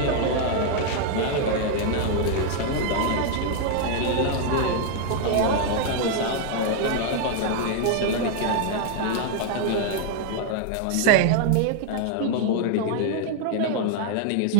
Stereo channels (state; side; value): different; both; correlation 0.00